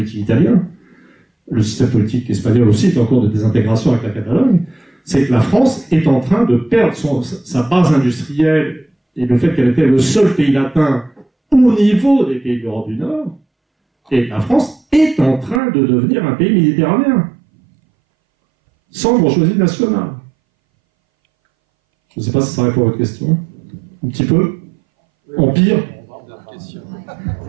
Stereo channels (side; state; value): left; drops out; at 15.6 s